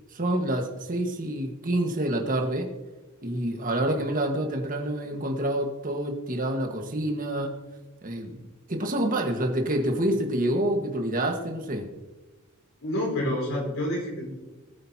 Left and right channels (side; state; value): both; normal; correlation 0.44